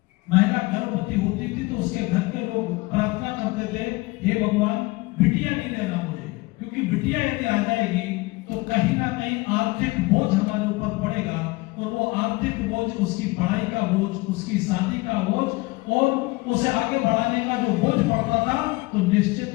महिला गर्भवती होती थी तो उसके घर के लोग प्रार्थना करते थे, हे भगवान बिटिया नहीं देना मुझे, क्योंकि बिटिया यदि आ जाएगी तो कहीं ना कहीं आर्थिक बोझ हमारे ऊपर पड़ेगा और वो आर्थिक बोझ, उसकी पढ़ाई का बोझ, उसकी शादी का बोझ और उसे आगे बढ़ाने का जो बोझ पड़ता था, तो निश्चित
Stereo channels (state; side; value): quieter; right; 23.0 dB